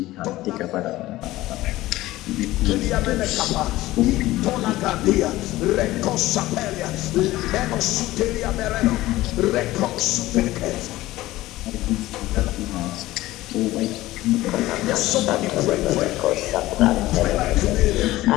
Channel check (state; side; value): quieter; right; 17.1 dB